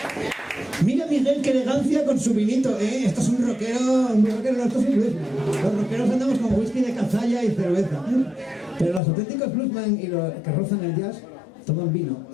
Mira Miguel, qué elegancia con su vinito, ¿eh? Esto es un rockero, no, esto es un bluesman. Los rockeros andamos con whisky de cazalla y cerveza. Pero los auténticos bluesman y los que rozan el jazz toman vino.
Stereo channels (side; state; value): right; drops out; at 9.0 s